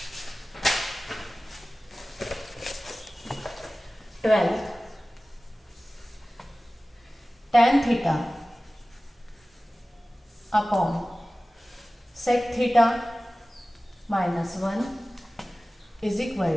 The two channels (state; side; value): normal; both; correlation 0.97